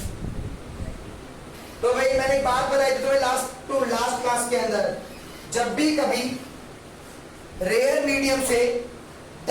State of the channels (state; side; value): identical; both; correlation 1.00